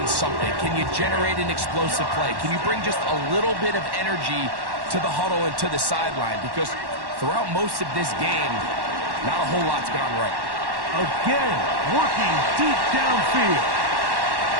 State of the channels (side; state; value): left; late; 1.1 ms